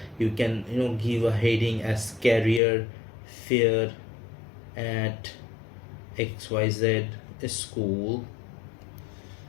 you can give a heading as career fair at XYZ school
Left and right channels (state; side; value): drops out; right; at 2.6 s